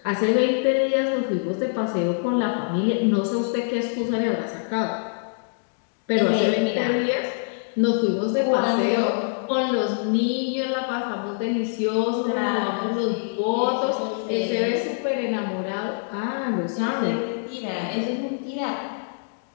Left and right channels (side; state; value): right; silent; digital silence